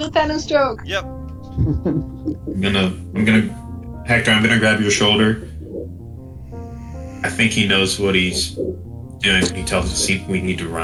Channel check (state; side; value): identical; both; correlation 1.00